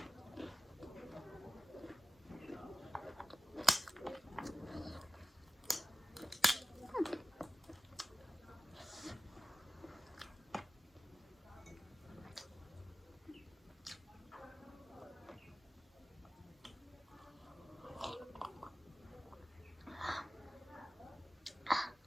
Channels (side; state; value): both; normal; correlation 0.95